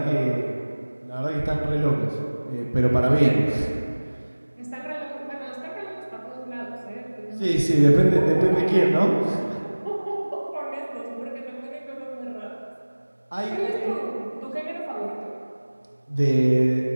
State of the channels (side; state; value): both; inverted; correlation -1.00